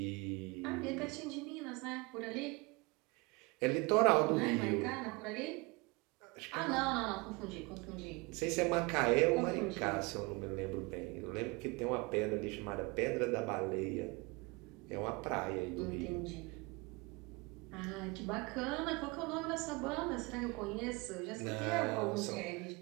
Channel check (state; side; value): quieter; left; 26.4 dB